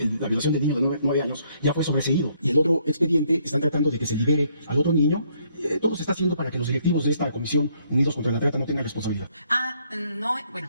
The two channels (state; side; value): inverted; both; correlation -0.69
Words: la violación del niño de 9 años, ya fue sobreseído. Y el otro expediente están tratando de que se libere al otro niño. Todo se está haciendo para que los directivos de esta comisión Unidos contra la Trata no tengan responsabilidad. No,